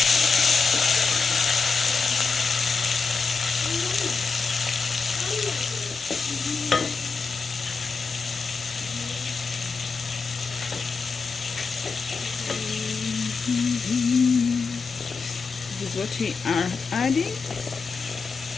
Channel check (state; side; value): quieter; right; 4.8 dB